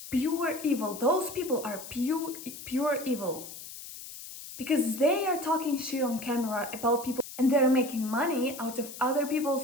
pure evil. Those people are pure evil because they are talking shit on camera about people and they're making money out of other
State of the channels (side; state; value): left; noise; hiss, 13 dB below the sound